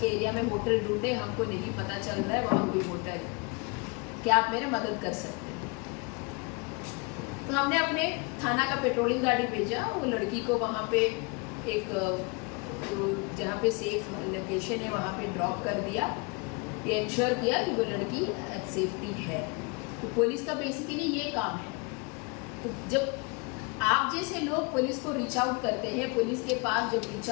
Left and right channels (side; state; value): right; quieter; 30.7 dB